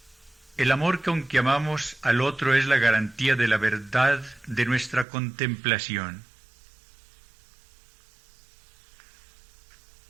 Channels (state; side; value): drops out; left; at 5.1 s